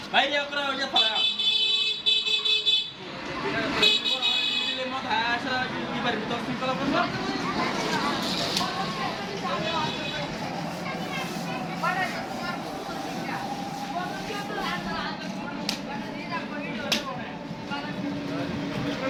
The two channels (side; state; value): both; identical; correlation 1.00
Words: বাইরে করে ওই যে ফলা দিলে মত আসা কি পারি তো সিম্পল করব